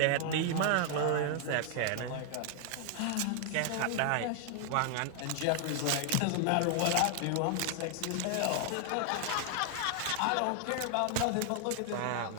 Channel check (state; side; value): different; both; correlation 0.00